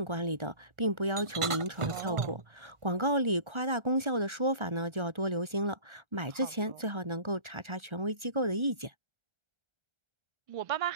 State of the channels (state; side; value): late; left; 1.4 ms